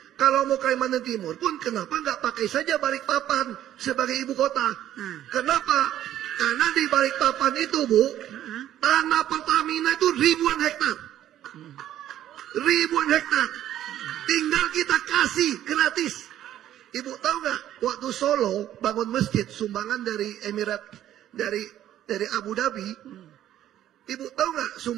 Kalau mau Kalimantan Timur pun kenapa nggak pakai saja Balikpapan sebagai ibu kota? Kenapa? Karena di Balikpapan itu Bu, tanah Pertamina itu ribuan hektar. Ribuan hektar. Tinggal kita kasih gratis. Ibu tahu nggak waktu Solo bangun masjid sumbangan dari Emirat dari Abu Dhabi. Ibu tahu nggak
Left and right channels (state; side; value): quieter; left; 12.0 dB